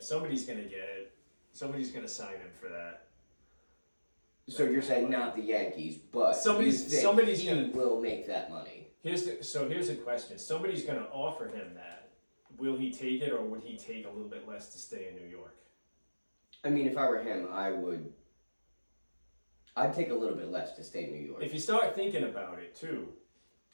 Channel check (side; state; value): both; inverted; correlation -1.00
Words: Somebody's gonna get it. Somebody's gonna sign him for that. So you're saying not the Yankees, but Somebody's- you think somebody's he gonna- will make that money. Here's the question. Somebody's going to offer him that. Will he take it, or would he take a little bit less to stay in New York? I mean, if I were him, I'd take a little bit less to stay in New York. If you start thinking about it too,